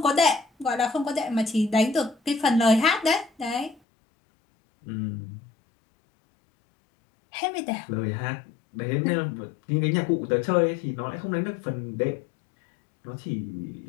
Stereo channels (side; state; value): right; drops out; at 3.8 s